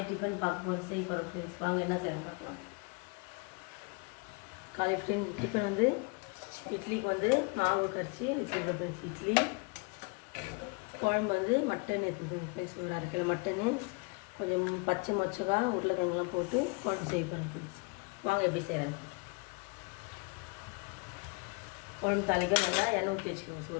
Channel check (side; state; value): right; quieter; 30.8 dB